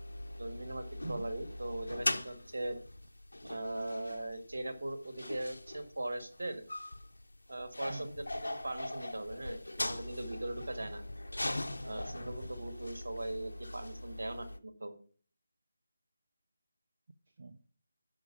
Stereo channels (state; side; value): inverted; both; correlation -0.97